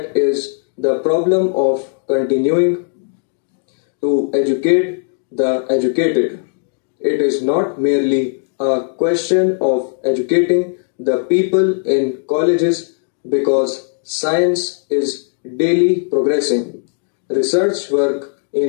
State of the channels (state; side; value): silent; right; digital silence